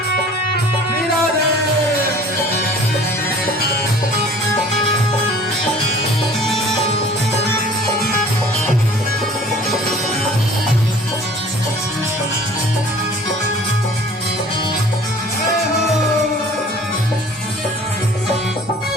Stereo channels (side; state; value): both; normal; correlation 0.49